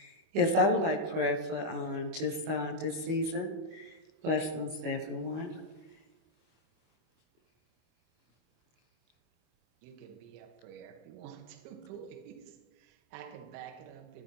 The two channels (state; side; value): late; left; 25 ms